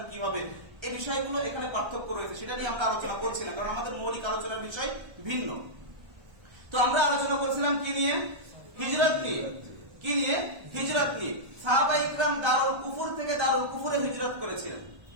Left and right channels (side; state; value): left; late; 1.3 ms